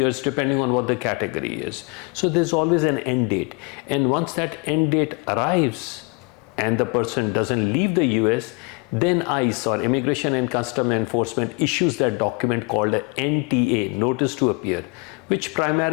depending on what the category is. So there's always an end date. And once that end date arrives and the person doesn't leave the US, then ICE, or Immigration and Customs Enforcement, issues that document called a NTA, Notice to Appear, which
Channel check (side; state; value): right; quieter; 31.2 dB